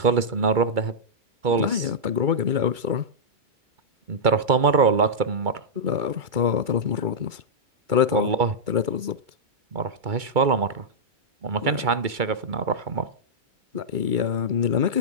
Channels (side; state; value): left; late; 2.3 ms